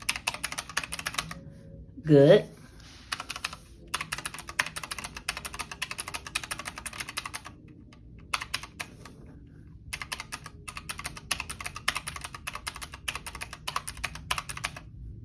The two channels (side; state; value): both; identical; correlation 1.00